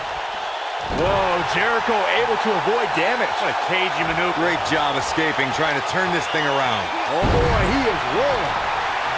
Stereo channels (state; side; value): identical; both; correlation 1.00